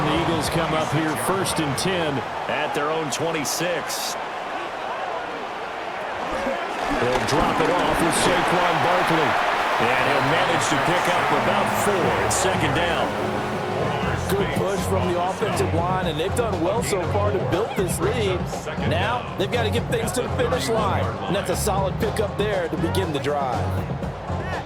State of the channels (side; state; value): both; identical; correlation 1.00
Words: the Eagles come up here 1st and 10 at their own 26. They'll drop it off with Saquon Barkley. And he'll manage to pick up about 4 at 2nd down. Good push from the offensive line, and they've done well so far to build this lead. Now they've got to get things to the finish line, and that's a solid pickup there to begin the drive.